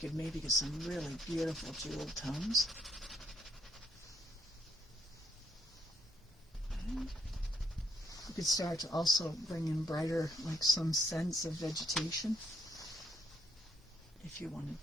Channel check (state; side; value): normal; both; correlation 0.72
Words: could maybe get some really beautiful jewel tones. And you could start to also bring in brighter, like some sense of vegetation, if you wanted